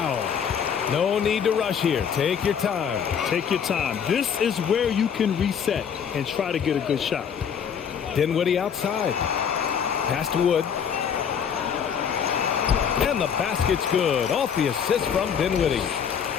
No need to rush here. Take your time. Take your time. This is where you can reset and try to get a good shot. Dinwiddie outside. Pass to Wood. And the basket's good. Off the assist from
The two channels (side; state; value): right; quieter; 7.6 dB